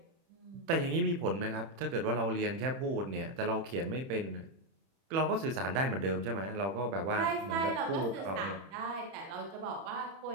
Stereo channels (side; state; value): left; late; 31 ms